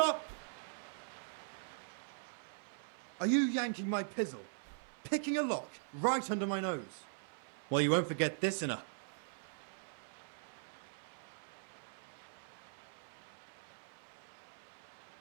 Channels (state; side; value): silent; left; 50 dB below the other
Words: Are you yanking my pizzle? Picking a lock right under my nose? Well, you won't forget this in a...